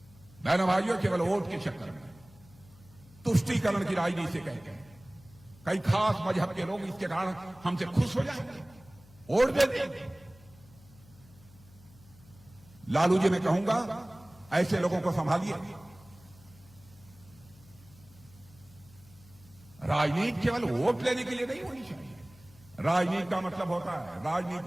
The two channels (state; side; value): noise; left; hum, 24 dB below the sound